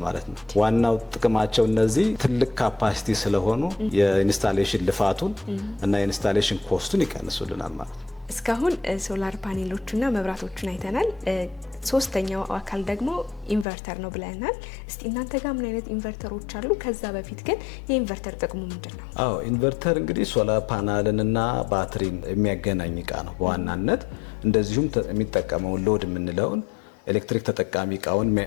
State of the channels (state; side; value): drops out; right; at 13.7 s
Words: ማለት ነው። ዋናው ጥቅማቸው እነዚህ ትልቅ ካፓሲቲ ስለሆኑ የኢንስታሌሽን ልፋቱን እና የኢንስታሌሽን ኮስቱን ይቀንሱልናል ማለት ነው። እስካሁን ሶላር ፓኔሎቹና መብራቶቹን አይተናል። ሶስተኛው አካል ደግሞ ኢንቨርተር ነው ብለናል። እስቲ እናንተ ጋር ምን አይነት ኢንቨርተሮች አሉ? ከዛ በፊት ግን የኢንቨርተር ጥቅሙ ምንድን ነው? ኢንቨርተር እንግዲህ ሶላር ፓናልንና ባትሪን የሚያገናኝ እቃ ነው በዋናነት። እንደዚሁም የሚጠቀመውን ሎድ የምንለውን ኤሌክትሪክ ተጠቃሚ እቃውን